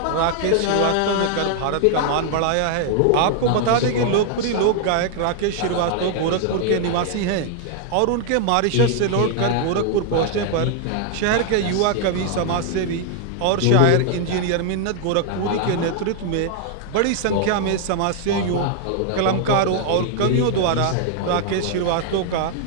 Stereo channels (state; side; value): different; both; correlation 0.00